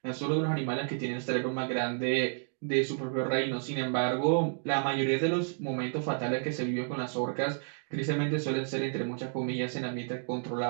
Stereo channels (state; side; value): silent; left; digital silence